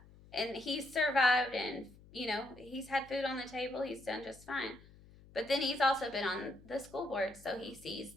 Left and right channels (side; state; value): left; noise; hum, 23 dB below the sound